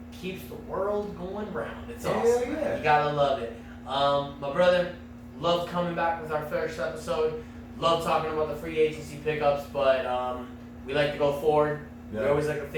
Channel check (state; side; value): identical; both; correlation 1.00